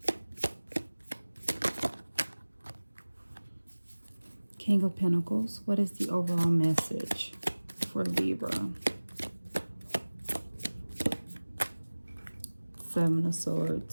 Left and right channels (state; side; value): inverted; both; correlation -1.00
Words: King of Pentacles. What is the overall message for Libra? Seven of